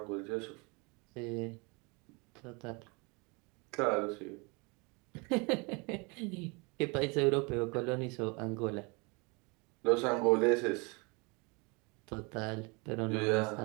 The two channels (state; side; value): quieter; left; 29.6 dB